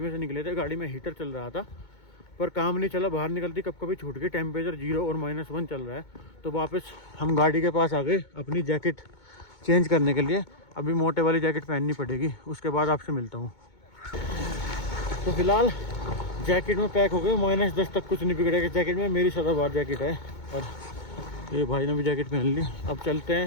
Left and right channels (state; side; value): late; right; 2.2 ms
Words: से निकले थे, गाड़ी में हीटर चल रहा था, पर काम नहीं चला। बाहर निकलती कब कभी छूट गई, टेम्परेचर 0 और -1 चल रहा है। तो वापस हम गाड़ी के पास आ गए अपनी जैकेट चेंज करने के लिए। अभी मोटे वाली जैकेट पहननी पड़ेगी, उसके बाद आपसे मिलता हूँ। तो फिलहाल जैकेट में पैक हो गए, -10 तक कुछ नहीं बिगड़ेगा जैकेट में। मेरी सदाबहार जैकेट है और ये भाई ने भी जैकेट पहन ली। अब चलते